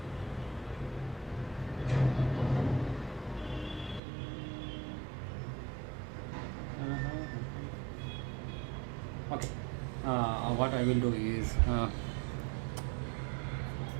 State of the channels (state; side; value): drops out; left; at 4.0 s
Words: Okay, what I will do is